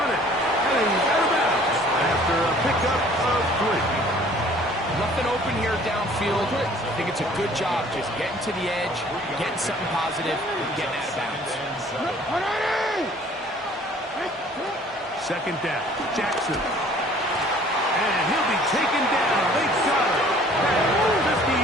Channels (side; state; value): both; normal; correlation 0.54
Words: it, and he's out of bounds after a pickup of 3. Nothing open here downfield. I think it's a good job just getting to the edge, getting something positive, and getting out of bounds. Second down, Jackson. And he'll be taken down. They got it at the